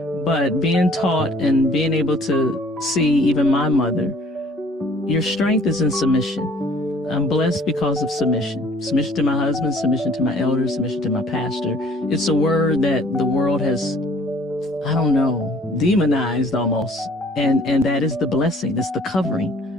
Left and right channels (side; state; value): both; normal; correlation 0.55